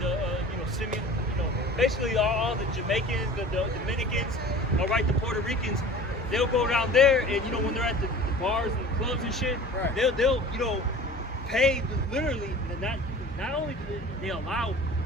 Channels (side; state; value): both; normal; correlation 0.41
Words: know, Simeon, you know, basically all the Jamaicans, the Dominicans, all right, the Puerto Ricans. They'll go down there, and you know, when they're at the bars and the clubs and shit, Right. they'll you know, pay literally not only do they allow